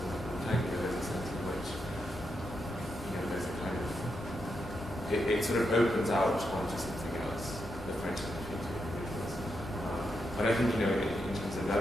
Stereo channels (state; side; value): normal; both; correlation 0.84